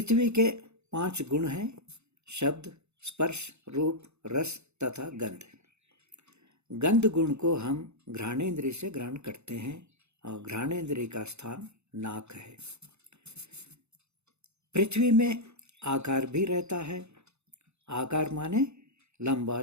के 5 गुण हैं: शब्द, स्पर्श, रूप, रस तथा गंध। गंध गुण को हम घ्राणेंद्रिय से ग्रहण करते हैं और घ्राणेंद्रिय का स्थान नाक है। पृथ्वी में आकार भी रहता है। आकार माने लंबा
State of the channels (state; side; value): late; left; 0.81 ms